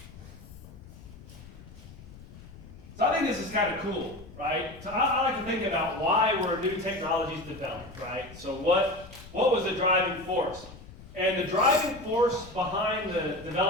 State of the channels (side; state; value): left; noise; rumble, 18 dB below the sound